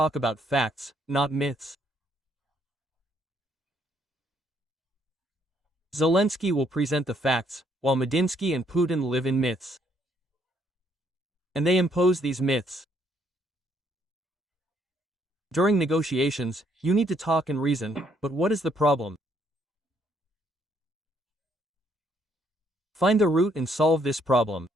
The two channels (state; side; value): normal; both; correlation 0.69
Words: about facts, not myths. Zelensky will present the facts, while Medinsky and Putin live in myths. And they impose these myths. During negotiations, you need to talk and reason, but what is the problem? Find the root and solve this problem.